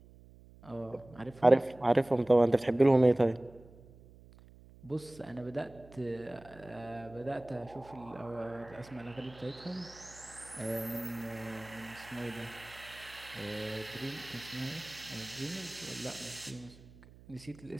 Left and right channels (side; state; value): right; noise; hum, 22 dB below the sound